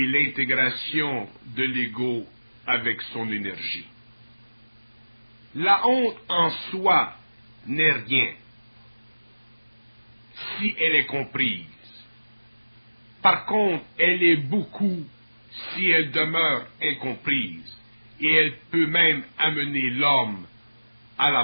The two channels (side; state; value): both; inverted; correlation -1.00